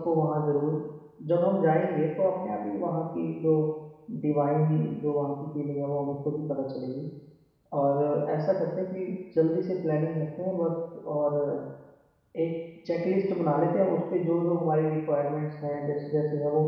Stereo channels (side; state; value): both; identical; correlation 1.00